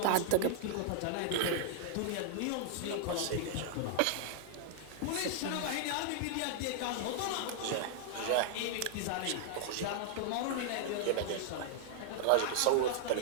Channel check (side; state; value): both; different; correlation -0.01